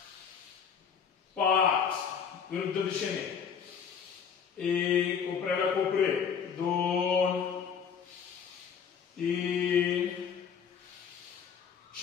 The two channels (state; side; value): quieter; right; 7.0 dB